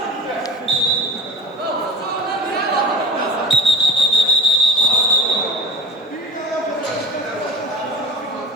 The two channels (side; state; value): both; normal; correlation 0.37